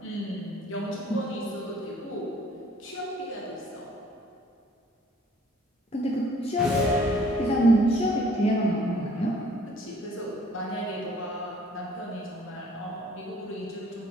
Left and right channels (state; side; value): normal; both; correlation 0.57